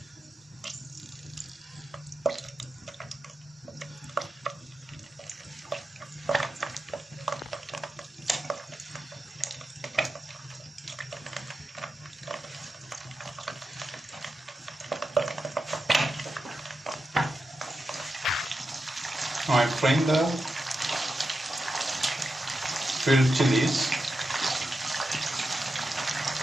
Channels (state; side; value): normal; both; correlation 0.89